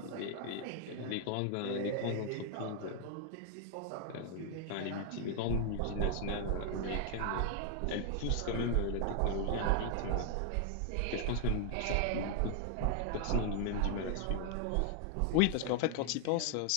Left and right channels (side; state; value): both; different; correlation 0.00